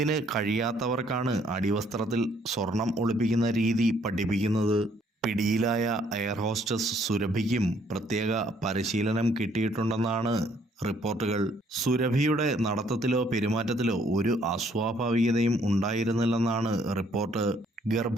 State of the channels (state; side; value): normal; both; correlation 0.65